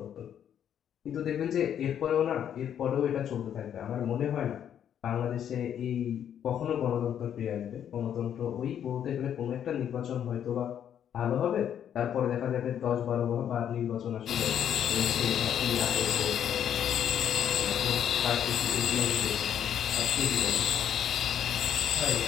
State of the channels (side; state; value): right; quieter; 9.4 dB